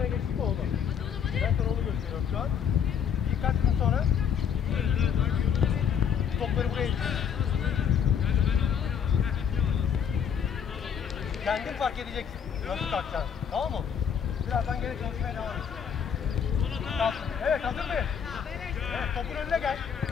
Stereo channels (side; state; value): right; quieter; 7.7 dB